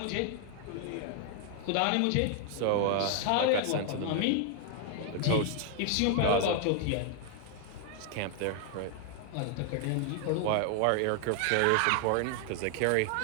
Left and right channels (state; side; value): different; both; correlation 0.00